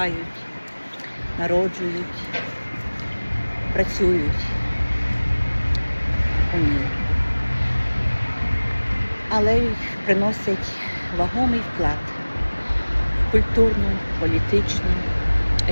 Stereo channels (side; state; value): both; inverted; correlation -1.00